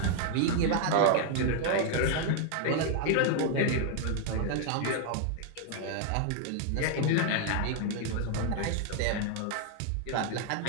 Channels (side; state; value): both; different; correlation 0.00